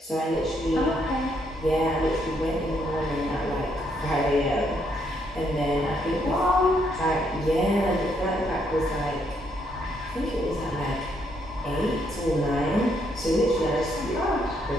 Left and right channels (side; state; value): both; normal; correlation 0.73